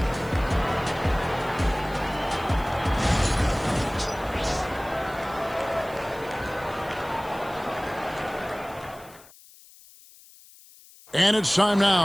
And it's time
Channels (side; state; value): left; noise; hiss, 23 dB below the sound